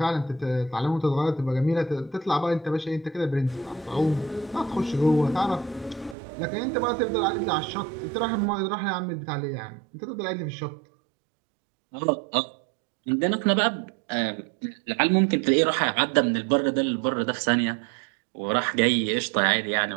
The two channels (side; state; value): left; drops out; at 6.2 s